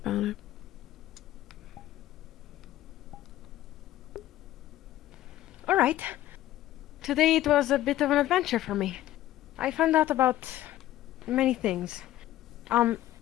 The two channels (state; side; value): quieter; right; 14.2 dB